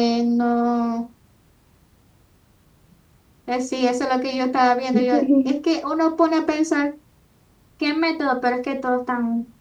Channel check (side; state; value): both; identical; correlation 1.00